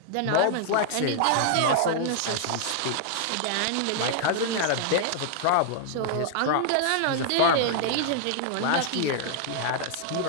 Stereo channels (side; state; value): both; different; correlation -0.01